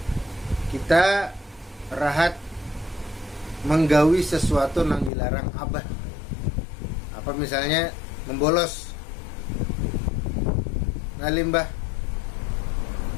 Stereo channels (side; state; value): right; drops out; at 5.1 s